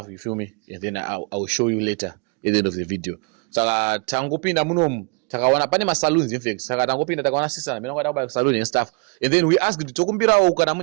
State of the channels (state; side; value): quieter; left; 33.2 dB